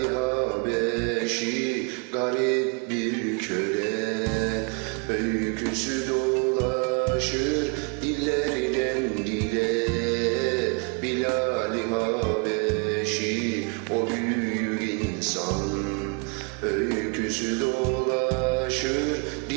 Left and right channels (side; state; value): left; quieter; 37.1 dB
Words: Habeşi garip bir köle. Öyküsü dolaşır dillerden dile, Bilal-i Habeşi o büyük insan. Öyküsü dolaşır